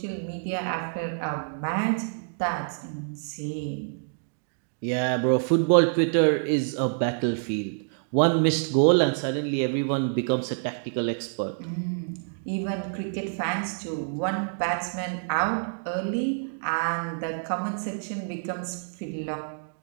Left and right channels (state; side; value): silent; left; digital silence